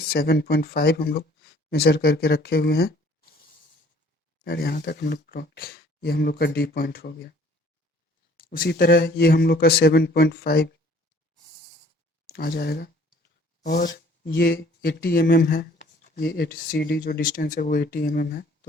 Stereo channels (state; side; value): normal; both; correlation 0.56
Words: हम लोग मेजर करके रखे हुए हैं, और यहाँ तक हम लोग ये हम लोग का डी पॉइंट हो गया। उसी तरह ये हम लोग का 7.5 आ जाएगा, और ये 80 mm है। ये 80 सी डी जो डिस्टेंस है वो 80 mm है,